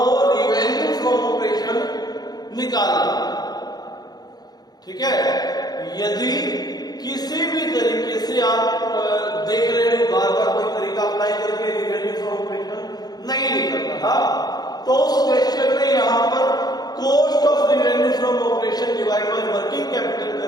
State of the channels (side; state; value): right; late; 0.19 ms